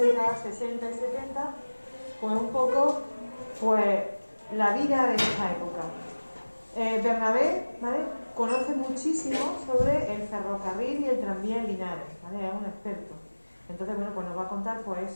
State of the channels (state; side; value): inverted; both; correlation -1.00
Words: 60 y 70, pues un poco, pues, la vida de esta época. Bernabé, ¿vale?, conoce muchísimo sobre el ferrocarril y el tranvía en Linares, ¿vale? Es un experto. Entonces, bueno, pues nos va a contar pues